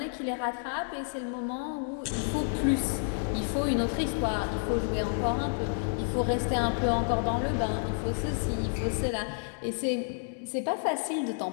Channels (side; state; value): right; silent; digital silence